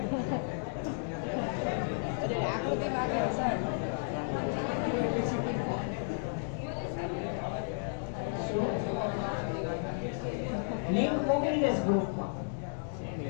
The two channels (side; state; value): right; silent; digital silence